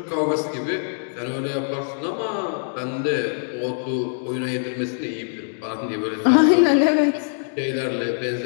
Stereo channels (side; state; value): right; silent; digital silence